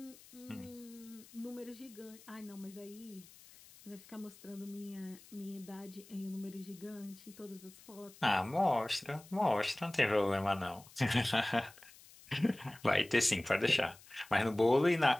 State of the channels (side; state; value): left; noise; hiss, 22 dB below the sound